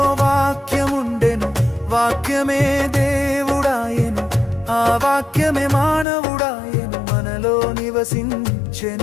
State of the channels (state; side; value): drops out; right; at 6.1 s